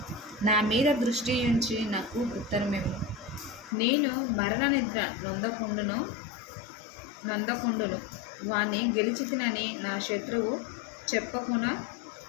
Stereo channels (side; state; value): right; drops out; at 3.7 s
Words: నా మీద దృష్టి ఉంచి నాకు ఉత్తరమిమ్ము. నేను మరణ నిద్ర నొందకుండును. వాణ్ణి గెలిచితినని నా శత్రువు